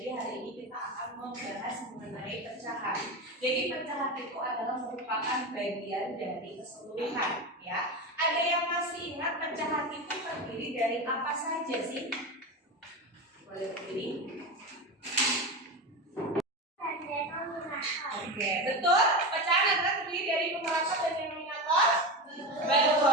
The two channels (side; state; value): both; normal; correlation 0.21